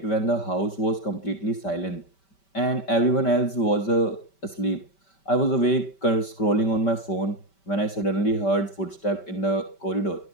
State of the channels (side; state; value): right; late; 5.2 ms